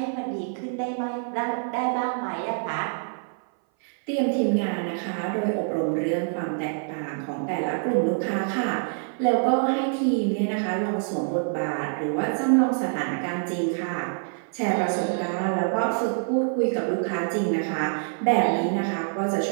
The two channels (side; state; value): left; silent; 58 dB below the other